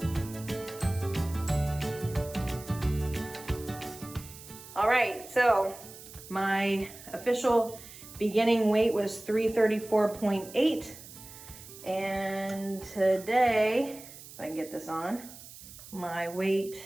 All right, so my official beginning weight was 334.8. And today, if I can get this on, my weight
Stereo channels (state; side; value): noise; right; hiss, 16 dB below the sound